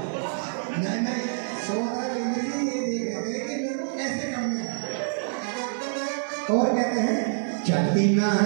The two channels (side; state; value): left; silent; digital silence